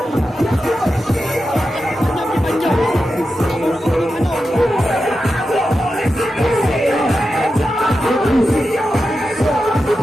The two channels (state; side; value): normal; both; correlation 0.90